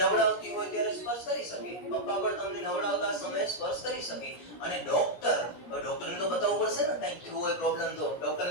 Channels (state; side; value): late; right; 17 ms